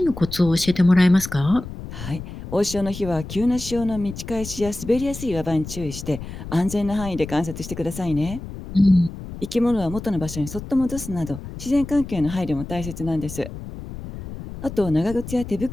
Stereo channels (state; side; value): noise; left; rumble, 11 dB below the sound